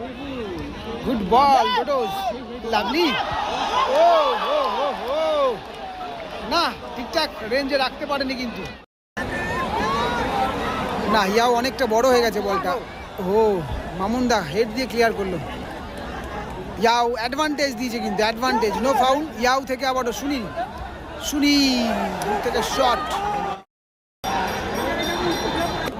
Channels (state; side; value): identical; both; correlation 1.00